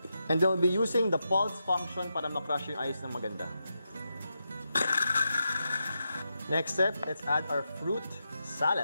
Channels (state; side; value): inverted; both; correlation -0.87